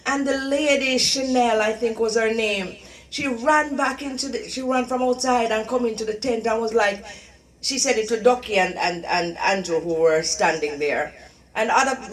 And the lady, Chanel, I think was her name, she ran back she ran from outside and come into the tent and was like, she said it to Ducky and Andrew who were standing there. And other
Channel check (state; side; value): identical; both; correlation 1.00